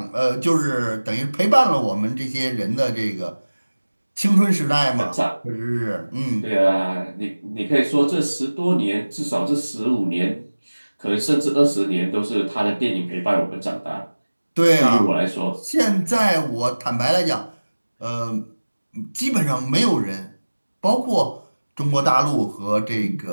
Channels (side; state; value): both; inverted; correlation -1.00